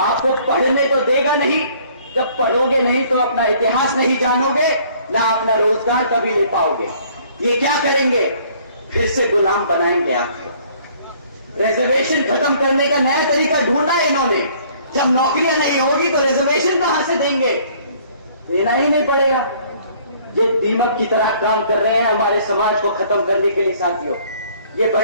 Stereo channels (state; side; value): inverted; both; correlation -0.58